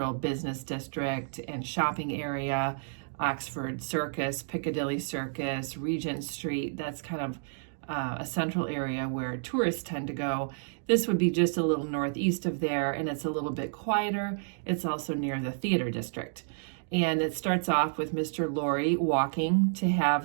business district and shopping area. Oxford Circus, Piccadilly Circus, Regent Street, that's kind of a central area where tourists tend to go. This would be just a little northeast of there, and it's a little bit quieter. It's also near the theater district. And it starts off with Mr. Lorry walking to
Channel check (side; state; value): left; silent; digital silence